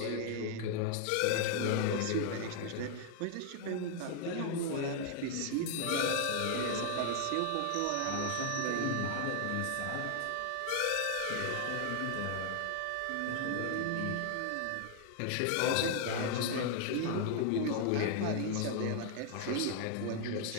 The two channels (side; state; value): both; different; correlation 0.00